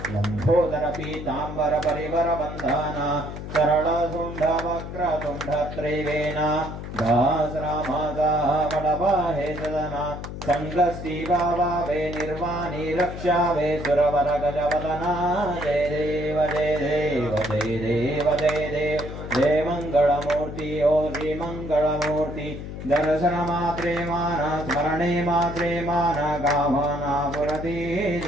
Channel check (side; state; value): left; noise; hum, 9 dB below the sound